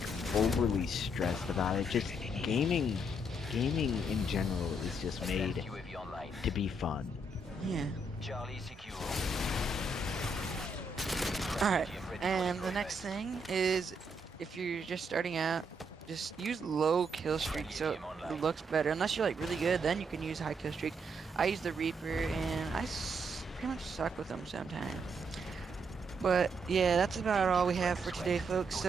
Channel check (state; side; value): normal; both; correlation 0.76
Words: overly stressed about it. Just gaming in general is just made UAV online. to be fun. Yeah. Charlie secure. Alright, and the next thing is, if you're just starting out, just use low kill streak so it looks better. Unless you're like really good, then you can use high kill streak. I use the Reaper and pretty much suck with them sometimes. But yeah, that's about all we have for today, folks.